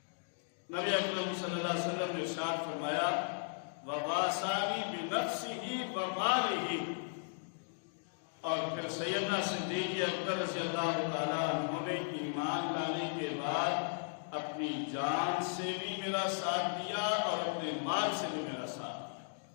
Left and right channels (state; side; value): silent; right; digital silence